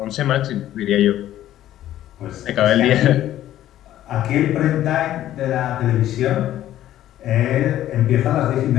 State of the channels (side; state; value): right; quieter; 12.9 dB